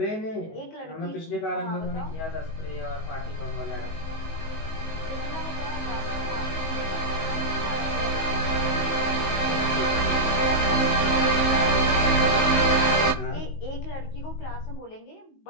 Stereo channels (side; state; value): right; late; 19 ms